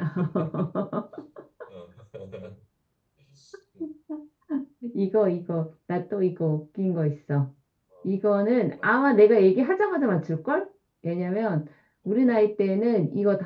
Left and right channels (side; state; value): both; identical; correlation 1.00